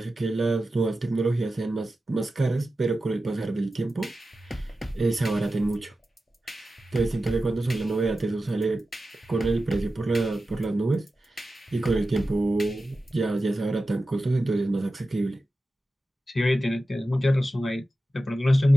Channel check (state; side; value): normal; both; correlation 0.93